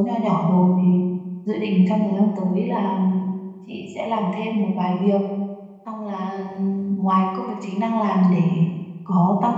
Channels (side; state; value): both; identical; correlation 1.00